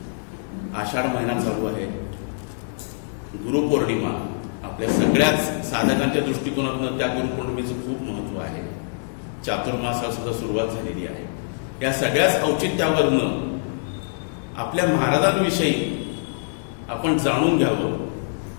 आषाढ महिना चालू आहे. गुरुपौर्णिमा आपल्या सगळ्याच साधकांच्या दृष्टिकोनातून त्या गुरुपौर्णिमेचं खूप महत्व आहे. चातुर्मासाला सुद्धा सुरुवात झालेली आहे. या सगळ्याच औचित्यावरनं आपल्या महाराजांविषयी आपण जाणून घ्यावं.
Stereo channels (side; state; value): right; silent; digital silence